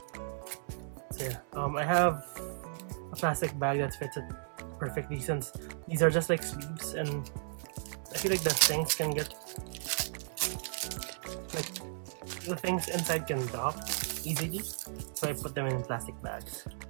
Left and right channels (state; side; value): silent; left; 55 dB below the other